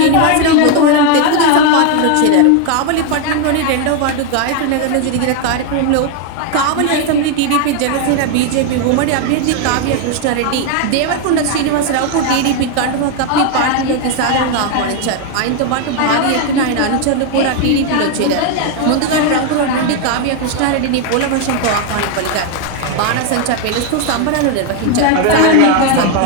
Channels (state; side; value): different; both; correlation 0.01